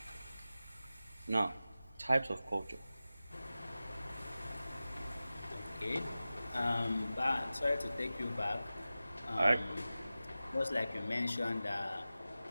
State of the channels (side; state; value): both; inverted; correlation -0.95